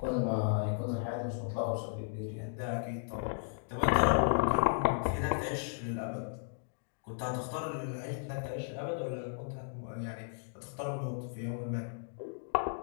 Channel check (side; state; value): right; silent; digital silence